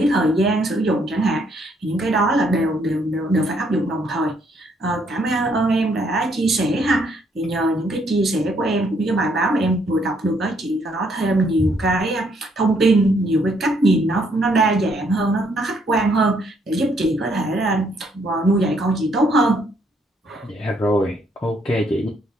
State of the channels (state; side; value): normal; both; correlation 0.70